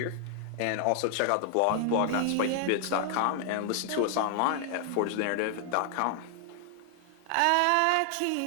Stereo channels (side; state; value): both; different; correlation 0.00